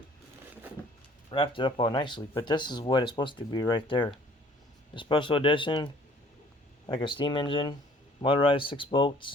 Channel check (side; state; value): both; normal; correlation 0.54